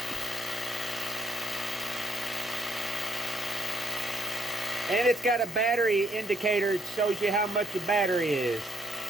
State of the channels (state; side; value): normal; both; correlation 0.72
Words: And it's got a battery indicator. It shows you how much the battery is.